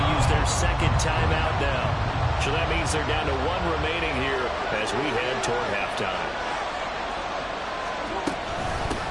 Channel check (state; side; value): identical; both; correlation 1.00